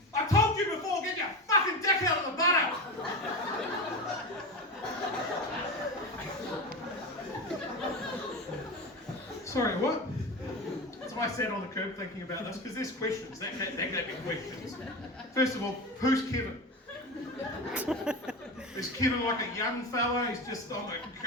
I told you before, get your fucking dick out of the butter!" Sorry, what? So I sat on the curb thinking about this because there's questions. That gave me questions. First of all, who's Kevin? Is Kevin like a young fella? He's just on the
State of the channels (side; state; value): both; normal; correlation 0.24